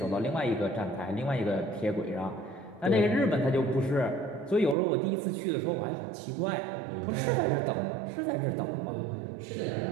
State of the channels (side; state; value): left; drops out; at 4.8 s